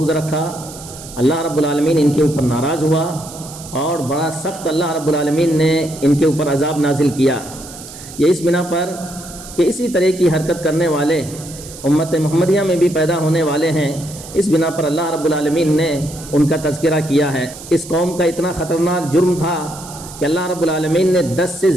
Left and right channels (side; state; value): right; noise; hiss, 15 dB below the sound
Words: رکھا، اللہ رب العالمین ان کے اوپر ناراض ہوا اور بڑا سخت اللہ رب العالمین نے ان کے اوپر عذاب نازل کیا۔ یہ اس بنا پر کہ اسی طرح کی حرکت کرنے والے امت محمدیہ میں بھی پیدا ہونے والے ہیں، اس بنا پر اللہ رب العالمین نے ان کا تذکرہ کیا ہے۔ اس قوم کا اتنا خطرناک جرم تھا کہ اللہ رب العالمین نے 10 سے